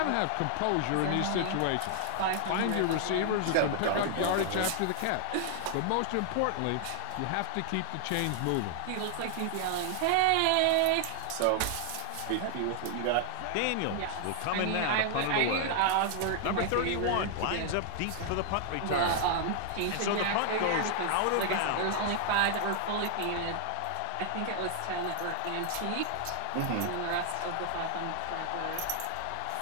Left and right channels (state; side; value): different; both; correlation 0.00